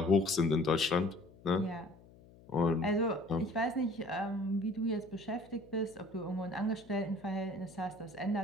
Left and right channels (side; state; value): left; noise; hum, 23 dB below the sound